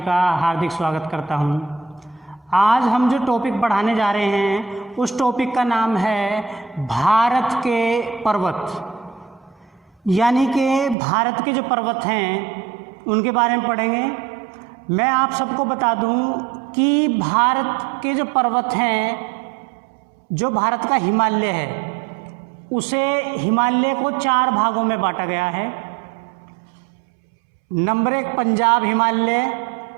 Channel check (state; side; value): drops out; left; at 11.0 s